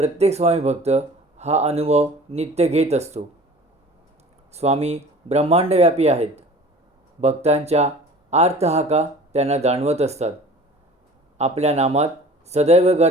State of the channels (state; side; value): normal; both; correlation 0.43